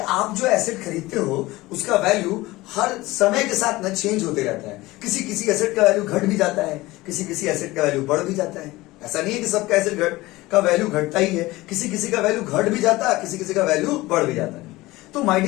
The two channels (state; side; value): quieter; right; 19.5 dB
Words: जो एसेट खरीदते हो उसका वैल्यू हर समय के साथ ना चेंज होते रहता है। किसी किसी एसेट का वैल्यू घट भी जाता है, किसी किसी एसेट का वैल्यू बढ़ भी जाता है। ऐसा नहीं है कि सबका एसेट का वैल्यू घटता ही है, किसी किसी का वैल्यू घट भी जाता है, किसी किसी का वैल्यू बढ़ भी जाता है। तो माय